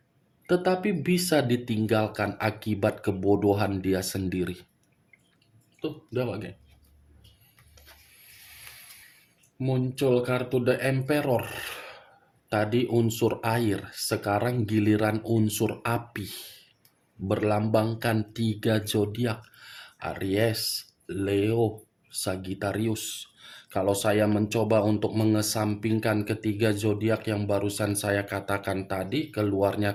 tetapi bisa ditinggalkan akibat kebodohan dia sendiri. Tuh, udah geng. Muncul kartu The Emperor. Tadi unsur air, sekarang giliran unsur api. Berlambangkan 3 zodiak, Aries, Leo, Sagittarius. Kalau saya mencoba untuk mengesampingkan ketiga zodiak yang barusan saya katakan tadi, keluarnya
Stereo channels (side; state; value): both; identical; correlation 1.00